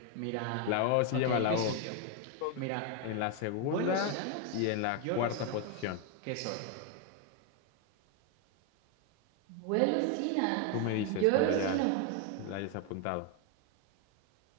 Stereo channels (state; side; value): different; both; correlation 0.01